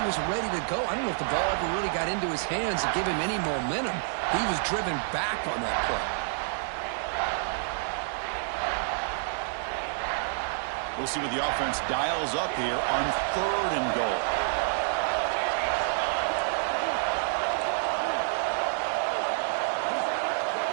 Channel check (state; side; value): silent; left; digital silence